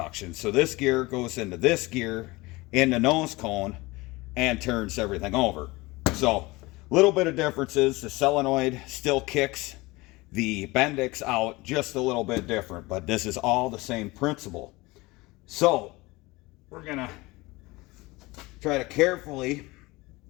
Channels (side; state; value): right; quieter; 22.2 dB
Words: So this gear goes into this gear in the nose cone and turns everything over. So little bit of differences. The solenoid still kicks the Bendix out just a little bit different, but this is all the same principle. So we're gonna try to carefully